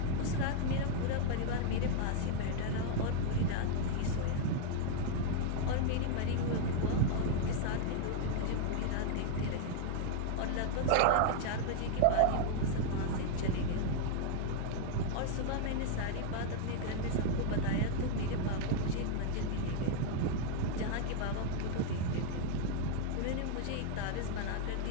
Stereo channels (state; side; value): different; both; correlation 0.00